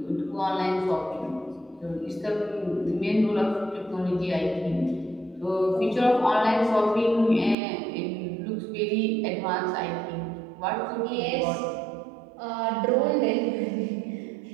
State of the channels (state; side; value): drops out; left; at 7.6 s